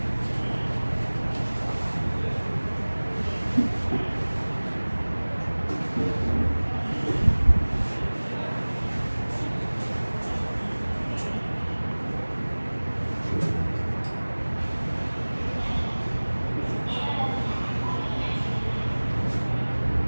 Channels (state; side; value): inverted; both; correlation -1.00